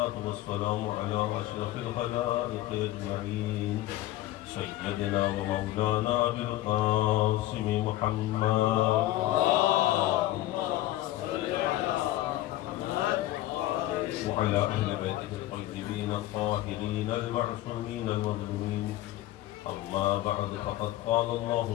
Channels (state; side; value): quieter; right; 15.3 dB